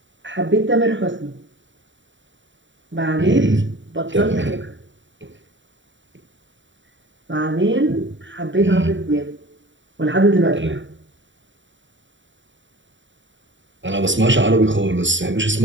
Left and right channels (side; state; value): left; late; 0.55 ms